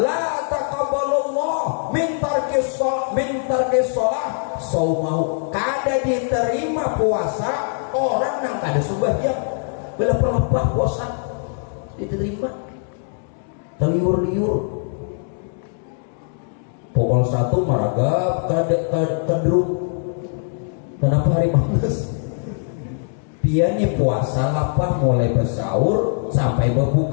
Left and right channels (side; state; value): right; silent; digital silence